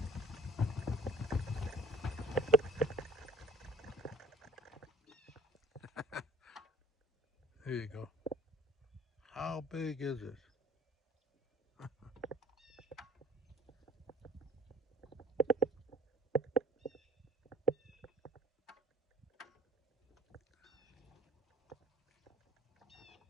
There you go. How big is it?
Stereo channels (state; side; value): normal; both; correlation 0.52